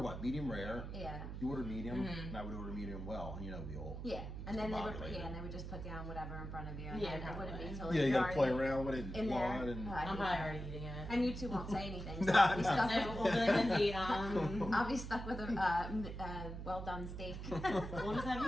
what? Medium rare. Yeah. You order medium, and I would order medium well, and we all. Yeah, and then they would, Discombobulated. and they would just put down whatever in front of you. And Yeah, then it wouldn't be probably. until Yeah, you gotta play already around with it, in there. blood, and Oh, I I'm hate probably that. already eating it. And you two won't say anything. So Nah, I'll, be nah. stuck We'll with, do it Lindsay. I'll be stuck with a well done steak. We'll just have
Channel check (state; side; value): noise; right; hum, 7 dB below the sound